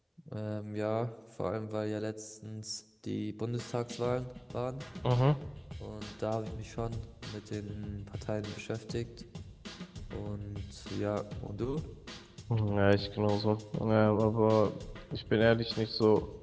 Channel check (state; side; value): identical; both; correlation 1.00